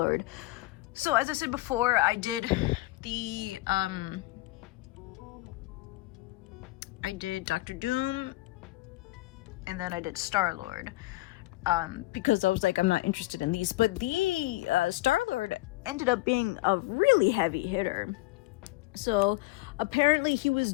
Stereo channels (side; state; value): right; quieter; 19.5 dB